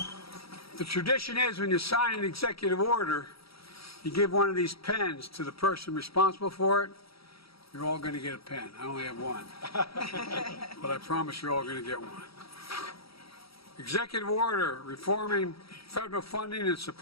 The tradition is when you sign an executive order, you give one of these pens to the person responsible for it. You're all going to get a pen. I only have one. But I promise you're all going to get one. Executive order reforming federal funding and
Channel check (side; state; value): right; late; 0.76 ms